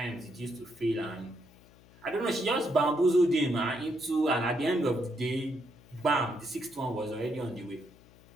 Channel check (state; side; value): noise; left; hum, 25 dB below the sound